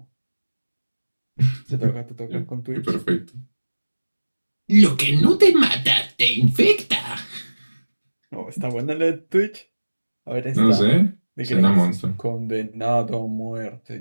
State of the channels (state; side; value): inverted; both; correlation -1.00